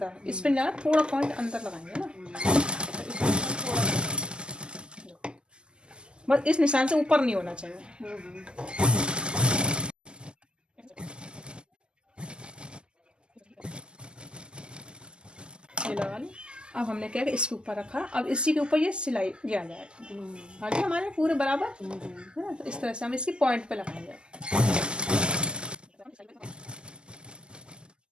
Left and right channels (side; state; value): left; late; 0.048 ms